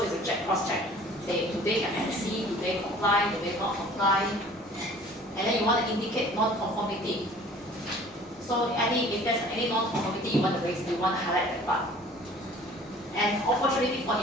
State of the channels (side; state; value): both; normal; correlation 0.49